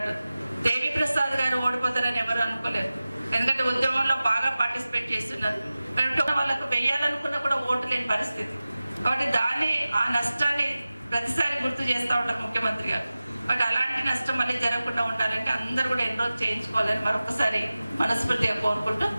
దేవి ప్రసాద్ గారు ఓడిపోతారని ఎవరు అనుకోలేరు. ఎందుకంటే ఉద్యమంలో బాగా పార్టిసిపేట్ చేస్తున్నారు. వాళ్ళకు వెయ్యాలనుకున్నా కూడా ఓటు లేని పరిస్థితి. కాబట్టి ఆ నష్టాన్ని ప్రతిసారి గుర్తు చేస్తూ ఉంటారు ముఖ్యమంత్రి గారు. బట్ అలాంటి నష్టం మళ్ళీ జరగకుండా ఉండాలంటే అందరూ కూడా ఎన్రోల్ చేయించుకోవాలని మరొకసారి మనస్ఫూర్తిగా కోరుకుంటూ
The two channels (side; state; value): both; inverted; correlation -0.96